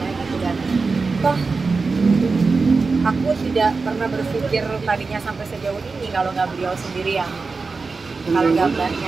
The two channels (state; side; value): quieter; left; 4.3 dB